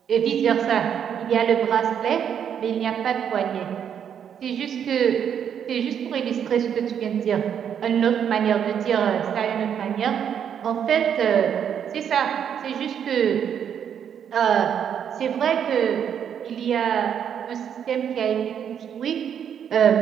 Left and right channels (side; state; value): left; quieter; 8.5 dB